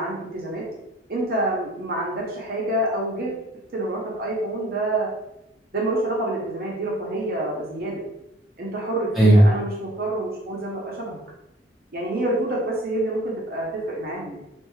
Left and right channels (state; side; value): normal; both; correlation 0.53